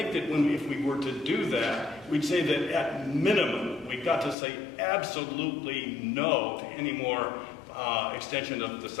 that if we were to do that, we'd say that at minimum, we've got to say absolutely no to any more extension of the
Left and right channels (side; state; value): right; drops out; at 4.4 s